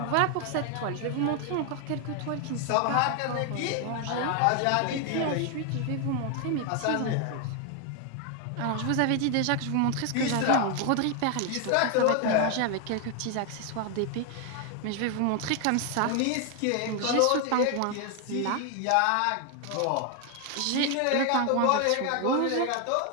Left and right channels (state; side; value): different; both; correlation 0.01